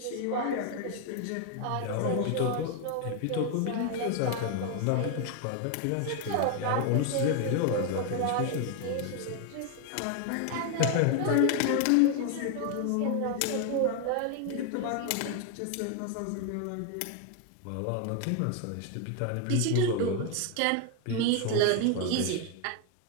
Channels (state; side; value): different; both; correlation 0.01